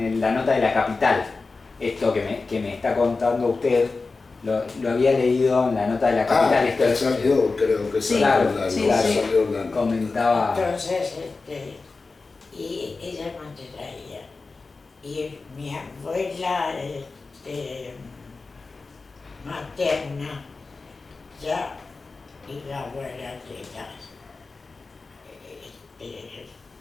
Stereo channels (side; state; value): right; quieter; 4.0 dB